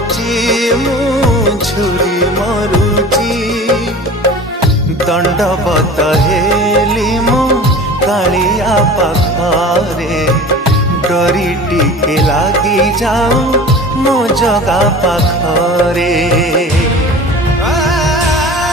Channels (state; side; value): normal; both; correlation 0.39